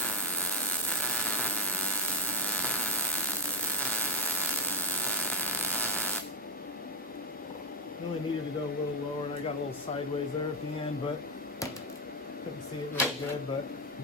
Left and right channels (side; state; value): both; normal; correlation 0.04